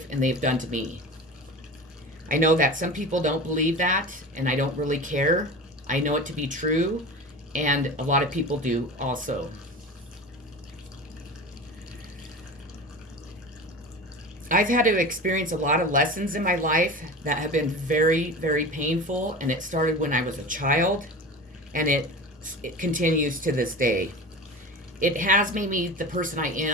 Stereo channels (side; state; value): both; normal; correlation 0.32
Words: and they've done to me. I know that some people don't believe that, and I don't really care. I know it to be true, and a lot of people do also. I've had to experience a lot of lessons in my life that have been very, very painful, and it started when I was a child, and it continues to this day. It has made me the person I